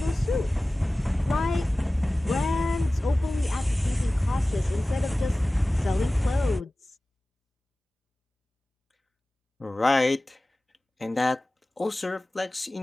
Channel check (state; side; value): normal; both; correlation 0.97